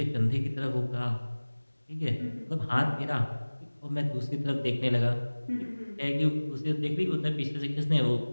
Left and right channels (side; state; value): both; inverted; correlation -1.00